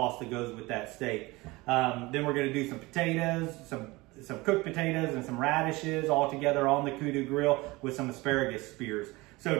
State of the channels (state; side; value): quieter; left; 22.2 dB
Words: that goes with that steak. Then we're going to do some potatoes, some cooked potatoes and some radishes all together on the Kudu grill with some asparagus spears.